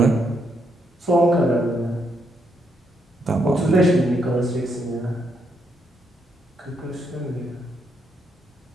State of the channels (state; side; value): normal; both; correlation 0.77